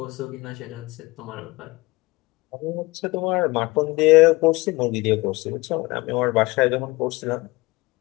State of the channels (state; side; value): quieter; right; 22.5 dB